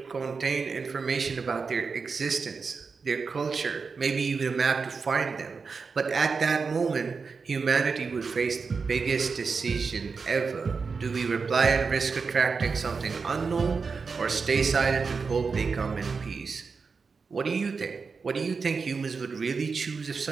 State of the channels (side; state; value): left; quieter; 5.0 dB